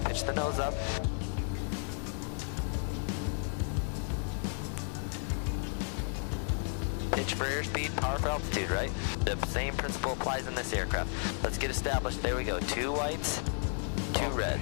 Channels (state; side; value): silent; right; 56 dB below the other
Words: pitch the nose up. Pitch for airspeed, power for altitude, right? The same principle applies in this aircraft. Let's get established. There we go. 2 whites, 2